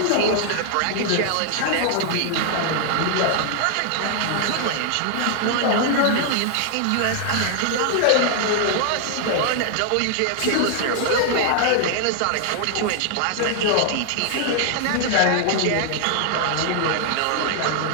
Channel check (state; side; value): different; both; correlation 0.00